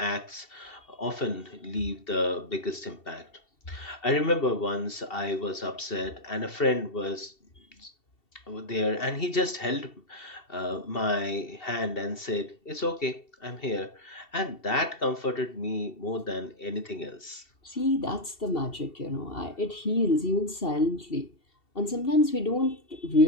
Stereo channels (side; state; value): right; late; 2.7 ms